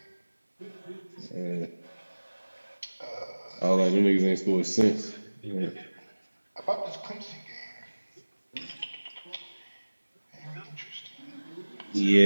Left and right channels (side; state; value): both; inverted; correlation -1.00